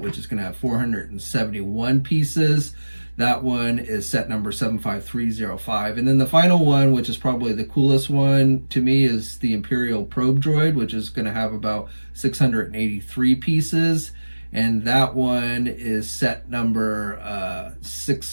which is going to have 471 pieces. That one is set number 75305. And then the final one, which is probably the coolest one to me, is the Imperial Probe Droid, which is going to have about 683 pieces. And that one is set number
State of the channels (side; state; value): both; inverted; correlation -1.00